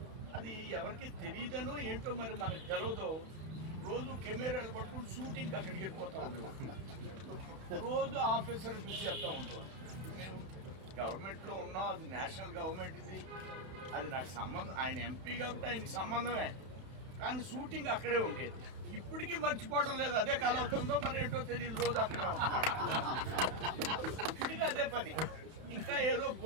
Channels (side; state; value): left; late; 31 ms